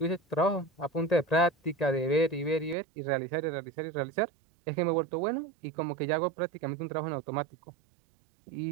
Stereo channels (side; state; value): left; drops out; at 2.8 s